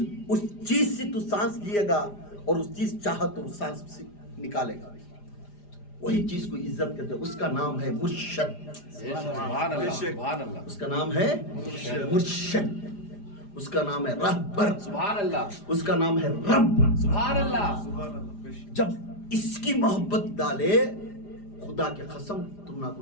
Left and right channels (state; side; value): late; right; 4.9 ms